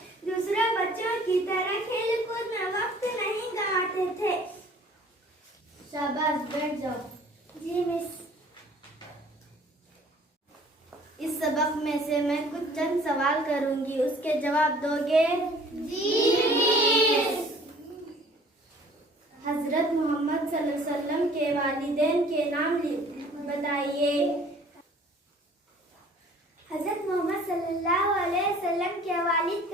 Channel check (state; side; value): normal; both; correlation 0.52